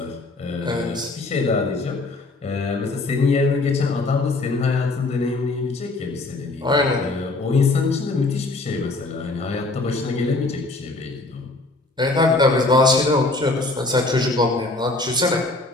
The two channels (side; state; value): right; quieter; 3.1 dB